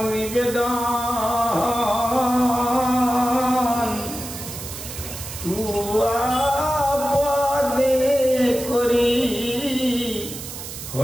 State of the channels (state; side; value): noise; right; hiss, 10 dB below the sound